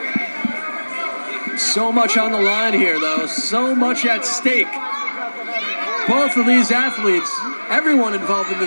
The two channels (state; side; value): inverted; both; correlation -1.00